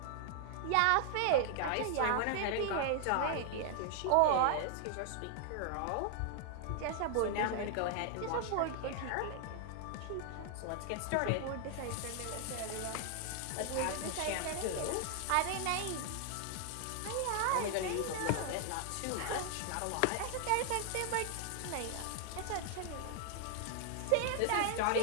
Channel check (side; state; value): both; different; correlation 0.00